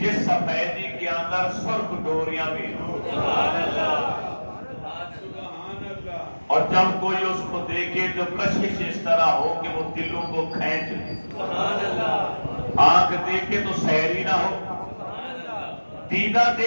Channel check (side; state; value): both; inverted; correlation -1.00